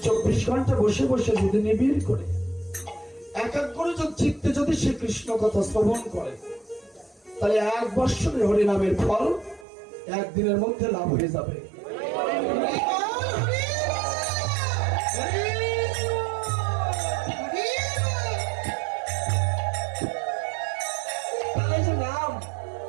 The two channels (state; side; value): drops out; left; at 9.7 s